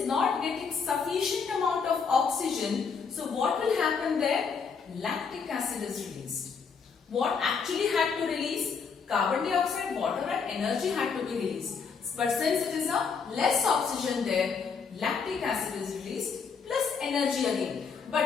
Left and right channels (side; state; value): right; quieter; 5.7 dB